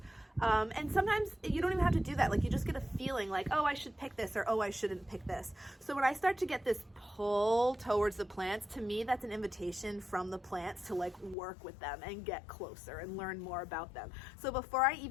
and sometimes you don't even have to do that. Like you just get a feeling like, oh, I should pick this, or oh, I shouldn't pick this. So when I start to get this pull towards the plants, to me, that's an invitation from the plants to like work with them and get closer and learn more about them. So before I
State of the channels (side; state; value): right; drops out; at 11.4 s